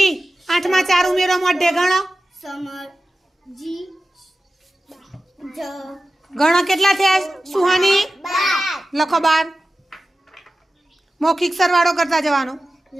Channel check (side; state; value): both; normal; correlation 0.94